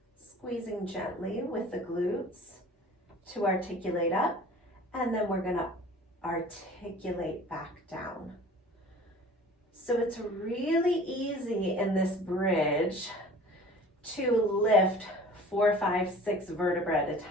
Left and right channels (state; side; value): normal; both; correlation 0.45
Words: squeezing gently with the glutes to articulate up, and then we're gonna articulate back down. So it's really easy in this bridge to lift 4, 5, 6 vertebrae at a